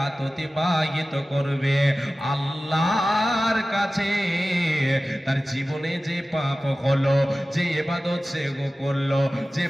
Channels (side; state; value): both; normal; correlation 0.96